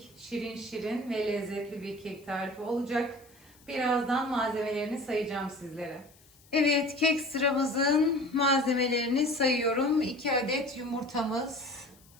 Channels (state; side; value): noise; left; hiss, 28 dB below the sound